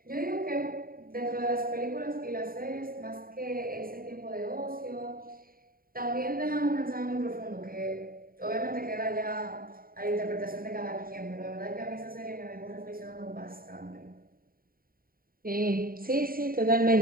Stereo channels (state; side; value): late; left; 0.42 ms